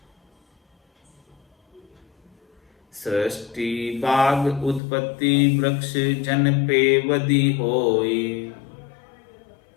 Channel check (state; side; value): drops out; right; at 4.8 s